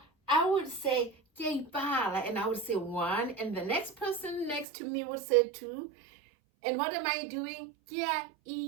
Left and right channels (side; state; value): left; drops out; at 4.7 s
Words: I would say, ibala, and I would say 1, and the next person next to me would say 2. And what am I doing?